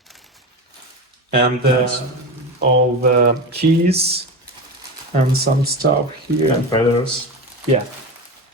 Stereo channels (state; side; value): normal; both; correlation 0.23